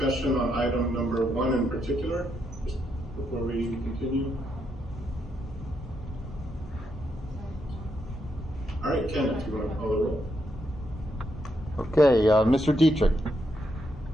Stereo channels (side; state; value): both; normal; correlation 0.79